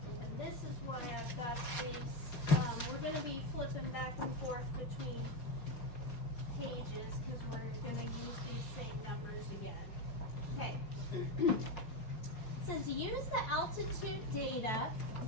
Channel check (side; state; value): right; late; 4.2 ms